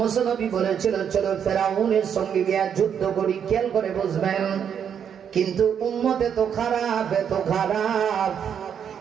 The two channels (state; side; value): quieter; left; 8.1 dB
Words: নবী বলেছিল চলো ফেরাউনের সঙ্গে গিয়ে যুদ্ধ করি, খেয়াল করে বুঝবেন। কিন্তু উম্মতে তো খারাপ, এত খারাপ,